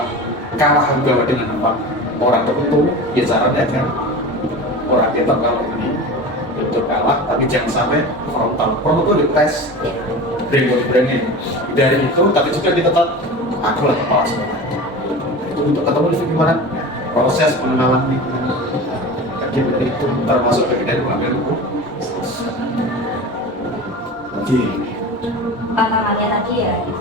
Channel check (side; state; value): both; normal; correlation 0.32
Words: kalah juga dengan apa orang tertentu, ya caranya kan orang kita kalau ini betul kalah, tapi jangan sampai frontal. Frontal itu dites, brain dari itu, tapi juga kita tetap aku lah kepala sekolah. Itu untuk ketemu di gimana proses pengenalan lingkungan. Jadi itu termasuk bagian dari pengambil hukum. Jadi tantangannya tadi ya, itu